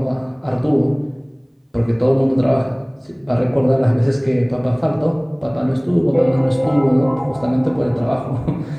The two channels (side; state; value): both; identical; correlation 1.00